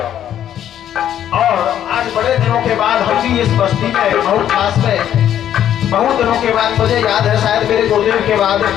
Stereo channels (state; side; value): quieter; right; 10.6 dB